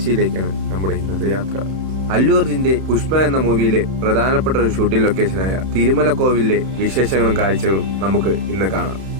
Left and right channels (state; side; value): late; left; 31 ms